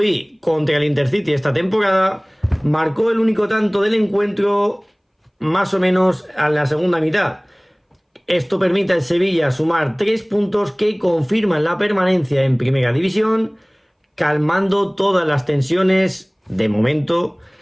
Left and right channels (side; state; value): both; identical; correlation 1.00